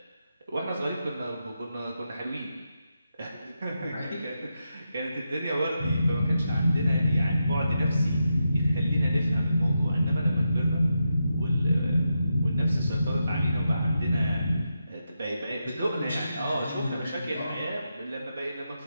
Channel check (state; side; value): inverted; both; correlation -0.86